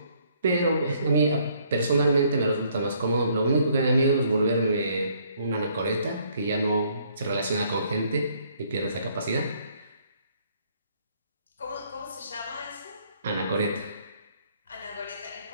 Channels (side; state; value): both; inverted; correlation -0.65